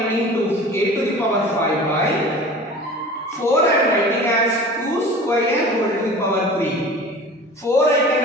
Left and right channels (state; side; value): normal; both; correlation 0.40